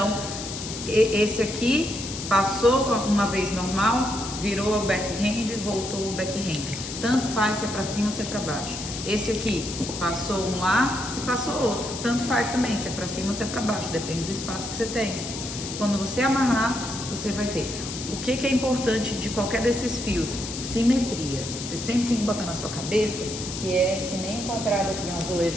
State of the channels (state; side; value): noise; left; hiss, 8 dB below the sound